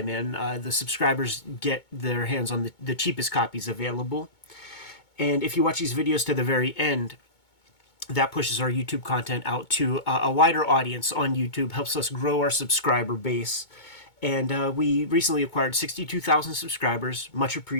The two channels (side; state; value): right; late; 2.2 ms